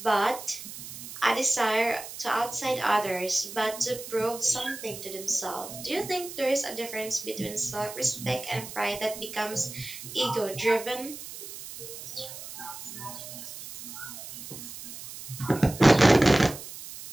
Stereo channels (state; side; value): noise; right; hiss, 12 dB below the sound